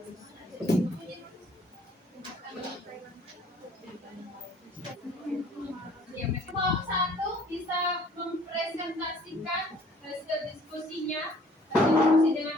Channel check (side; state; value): both; normal; correlation 0.56